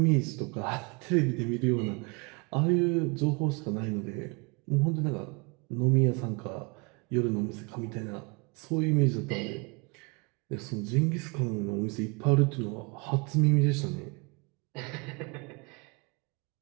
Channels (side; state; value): left; quieter; 30.9 dB